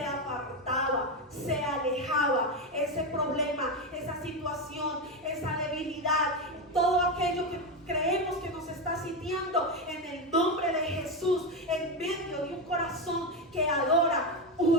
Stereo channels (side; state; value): both; normal; correlation 0.12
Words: apartaba, se alejaba. Ese problema, esa situación, esa debilidad, todo aquello que creemos que nos está sitiando, en el nombre de Jesús, en medio de un corazón que adora,